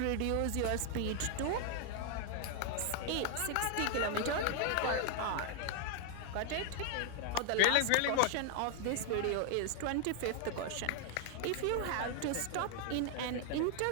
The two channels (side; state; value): both; different; correlation 0.00